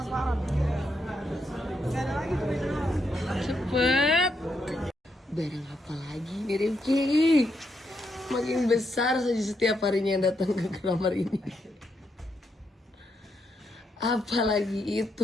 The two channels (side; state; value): both; normal; correlation 0.80